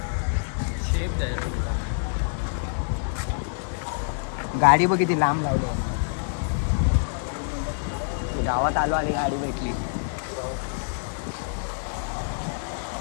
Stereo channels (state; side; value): silent; right; digital silence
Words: गाडी बघ किती लांब लावली. गावात आलो आणि गाडी भेटली.